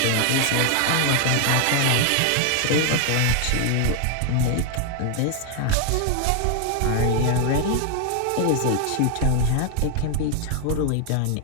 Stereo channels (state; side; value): different; both; correlation 0.01